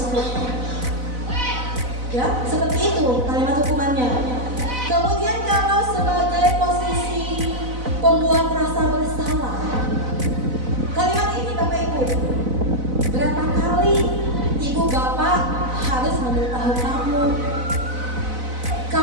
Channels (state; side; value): late; left; 4.0 ms